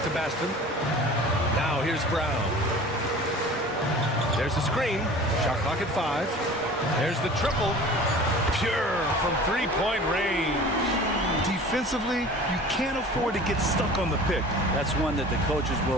Baston. Now here's Brown. There's the screen. Shot clock at 5. There's the triple. Pure from three-point range. Defensively, you can't afford to get stuck on the pick. That's one that the coaches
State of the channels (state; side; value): normal; both; correlation 0.42